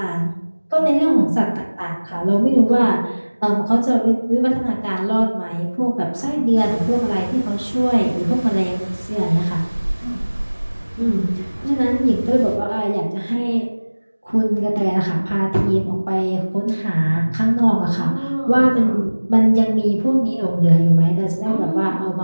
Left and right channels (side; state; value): both; inverted; correlation -1.00